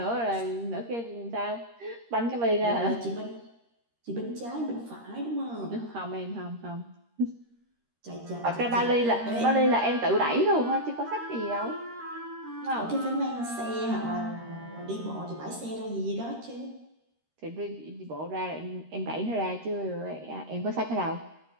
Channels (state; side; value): late; left; 13 ms